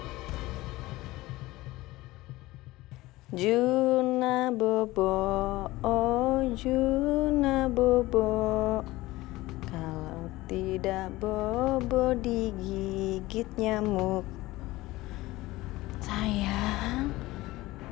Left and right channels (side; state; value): right; quieter; 18.8 dB